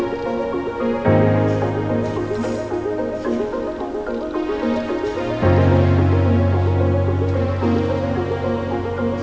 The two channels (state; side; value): identical; both; correlation 1.00